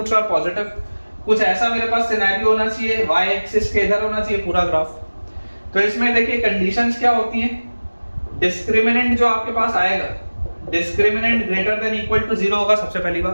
are positive, कुछ ऐसा मेरे पास सिनेरियो होना चाहिए, वाई एक्सिस के इधर होना चाहिए पूरा ग्राफ। तो इसमें देखिए कंडीशंस क्या होती हैं। डिस्क्रिमिनेंट जो आपके पास आएगा, discriminant greater than equal to 0 होगा सबसे पहली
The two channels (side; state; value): both; inverted; correlation -1.00